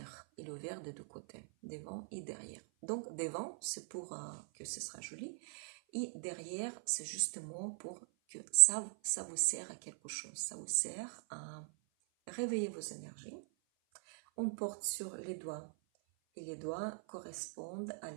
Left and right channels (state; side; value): silent; left; 50 dB below the other